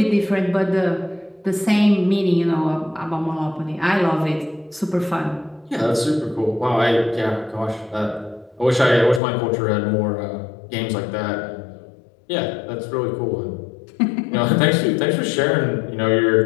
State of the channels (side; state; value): right; drops out; at 9.2 s